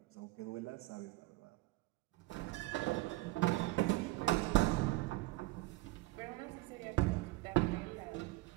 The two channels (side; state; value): left; quieter; 20.5 dB